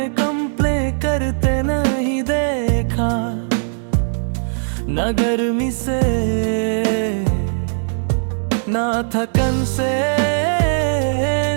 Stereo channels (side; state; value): left; silent; digital silence